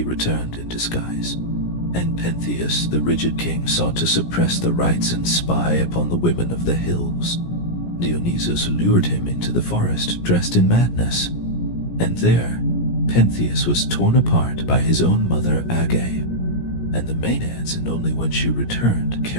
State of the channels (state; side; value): late; right; 17 ms